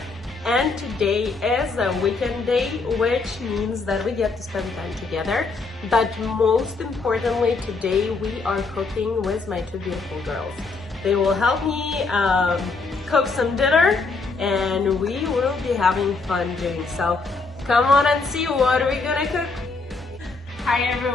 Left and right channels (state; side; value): quieter; right; 4.0 dB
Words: and today is a weekend day, which means that we get to spend time together. But most importantly, today we are cooking with my 2 beautiful girls. They will help me cook some dinner and we will be having fun doing so. Come on and see what are we gonna cook. Hi